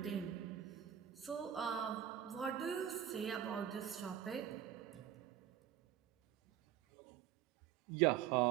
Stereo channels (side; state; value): left; quieter; 10.5 dB